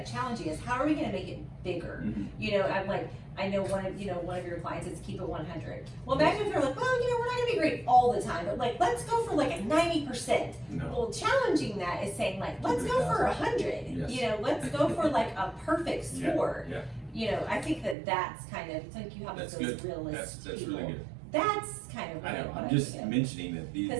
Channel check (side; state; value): left; drops out; at 17.9 s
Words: challenging is. How are we going to make it bigger? Mm-hmm. I'm like. I know one of your clients is keep it 100. Well, imagine if they're like, well, we're not going to be great all the time, but like, let's go for like a 90%. No. Well, challenging that is saying like, let's go for 100. Yes. Let's go for like a perfect score. Yeah. I think that's kind of, it's like you have those realistic That's people. really good. That's kind of what I know. I'm just mentioning that these